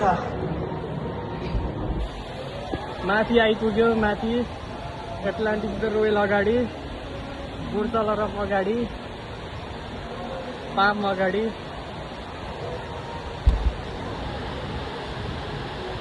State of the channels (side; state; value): both; identical; correlation 1.00